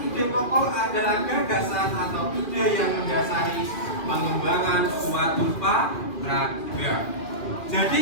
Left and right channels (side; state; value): right; late; 2.4 ms